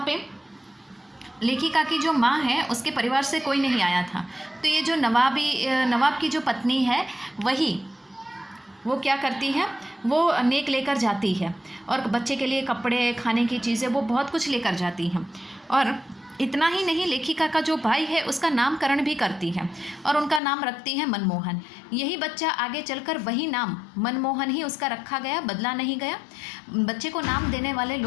पे लेखिका की जो माँ है उसके परिवार से कोई नहीं आया था। तो ये जो नवाब की जो पत्नी है वो क्या करती है, वो नेक लेकर जाती है और बच्चे के लिए कपड़े, खाने की चीज़ें, वो बहुत कुछ लेकर जाती हैं। और इतना ही नहीं, लेखिका का जो भाई है उसका नामकरण भी करती है और उनका नाम रखती है मनमोहन। यही बच्चा आगे चलकर वही नाम मनमोहन ही उसका रखा गया, बदला नहीं गया। बच्चे को नाम देने वाले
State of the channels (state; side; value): drops out; right; at 20.4 s